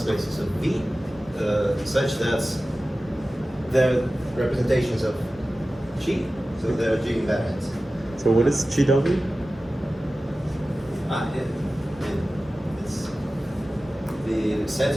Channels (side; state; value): both; normal; correlation 0.95